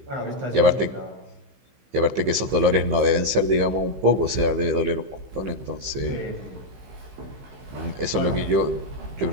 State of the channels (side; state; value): left; late; 15 ms